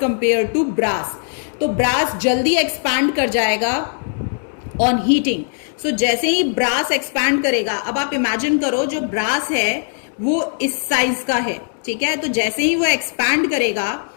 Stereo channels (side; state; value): right; silent; 66 dB below the other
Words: कंपेयर टू ब्रास. तो ब्रास जल्दी एक्सपैंड कर जाएगा ऑन हीटिंग. सो जैसे ही ब्रास एक्सपैंड करेगा, अब आप इमेजिन करो जो ब्रास है वो इस साइज का है. ठीक है, तो जैसे ही वो एक्सपैंड करेगा,